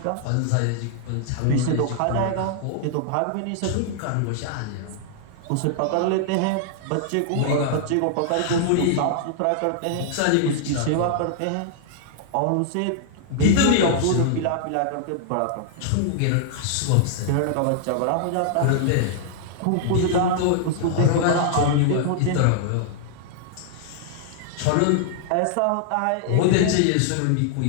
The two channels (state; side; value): different; both; correlation -0.01